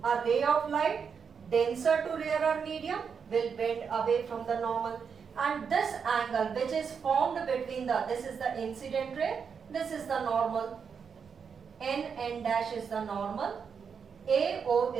A ray of light denser to rarer medium will bend away from the normal. And this angle which is formed between this is the incident ray, this is the normal. N dash is the normal, AO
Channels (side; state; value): left; quieter; 6.4 dB